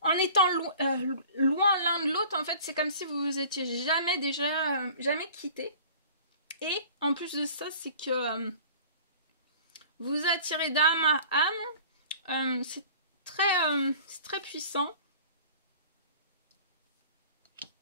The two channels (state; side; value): inverted; both; correlation -0.45